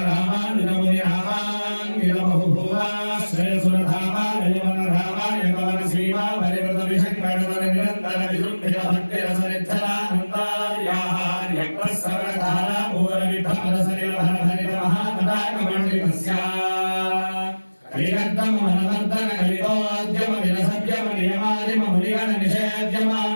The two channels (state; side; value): inverted; both; correlation -1.00